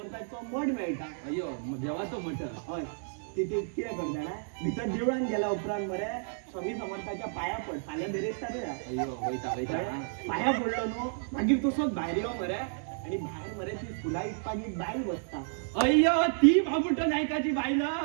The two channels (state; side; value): silent; left; digital silence